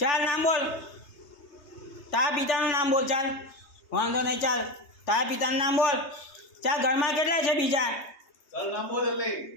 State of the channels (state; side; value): late; right; 3.3 ms